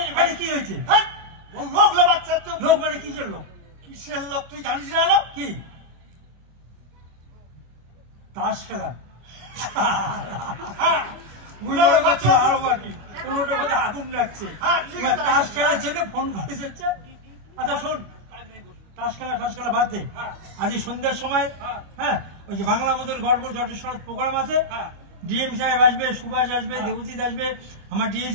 আরে কি হয়েছে? লোক লোবাচ্ছে তো। লোক মানে কিসের লোক? কিসের লোক তুই জানিস না? লোক কি তাস খেলা? হ্যাঁ, বুঝলো বাচ্চা আরো বাকি কোনোটা কোথাও আগুন লাগছে। হ্যাঁ, ঠিক আছে। তাস খেলার জন্য ফোন করে যাচ্ছে। আচ্ছা শোন, তাস খেলা ফাঁস খেলা বাদ দে। আজ সন্ধ্যার সময় হ্যাঁ ওই যে বাংলা মোদের গর্ব জটেশ্বর প্রোগ্রাম আছে। ডিএম সাহেব আসবে, সুভাষ আসবে, দেবজিৎ আসবে, আমার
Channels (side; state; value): left; late; 25 ms